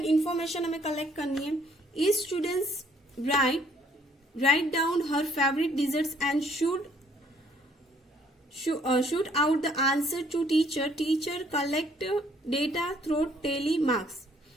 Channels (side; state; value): both; normal; correlation 0.63